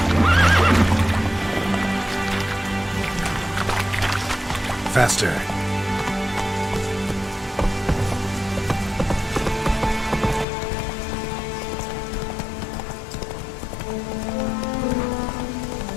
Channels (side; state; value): right; drops out; at 10.5 s